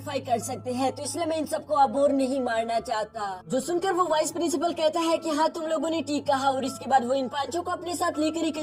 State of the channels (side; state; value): both; identical; correlation 1.00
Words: कर सकते हैं, तो इसलिए मैं इन सबको अब और नहीं मारना चाहता। जो सुनकर वो वाइस प्रिंसिपल कहता है कि हाँ, तुम लोगों ने ठीक कहा, और इसके बाद वो इन पांचों को अपने साथ लेकर एक